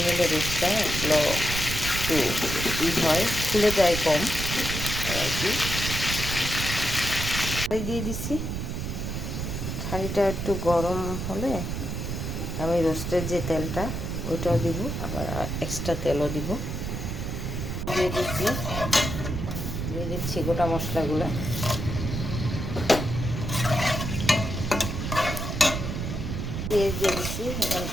নিলে রোস্টটা এগুলো একটু হয়, খুলে যায় কম আর কি। দিয়ে দিচ্ছি। হাঁড়িটা একটু গরম হলে আমি রোস্টের যে তেলটা ওইটাও দিব, আবার এক্সট্রা তেলও দিব। দিয়ে দিচ্ছি গোটা মশলাগুলো। পেঁয়াজ দিয়ে দিচ্ছি। এখন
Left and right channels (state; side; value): noise; right; rumble, 4 dB below the sound